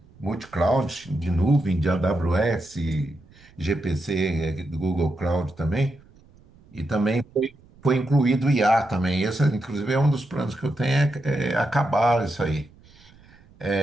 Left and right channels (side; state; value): right; noise; rumble, 27 dB below the sound